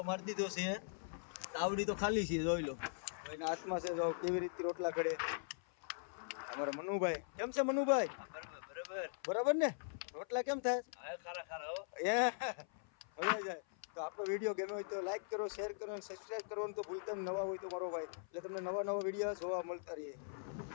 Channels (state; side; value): silent; right; 51 dB below the other